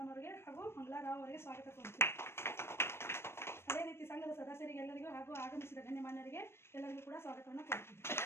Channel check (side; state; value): right; late; 0.12 ms